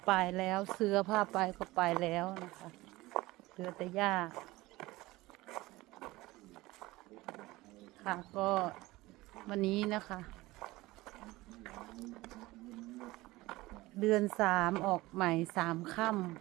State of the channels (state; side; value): quieter; left; 19.4 dB